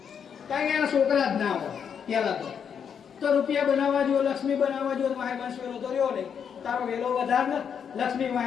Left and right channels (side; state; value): right; quieter; 7.5 dB